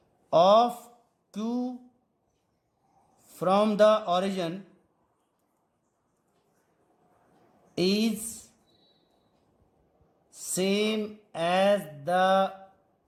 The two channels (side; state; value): both; identical; correlation 1.00